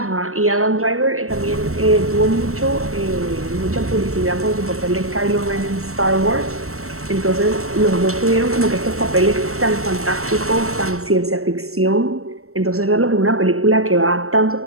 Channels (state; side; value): late; left; 0.63 ms